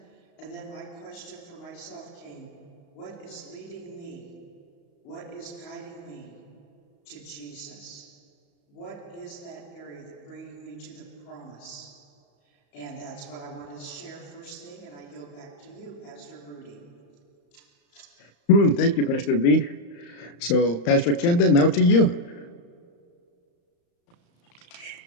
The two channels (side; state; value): right; late; 35 ms